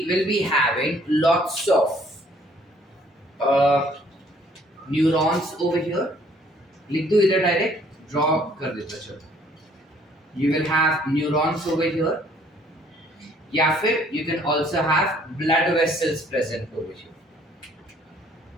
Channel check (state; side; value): normal; both; correlation 0.61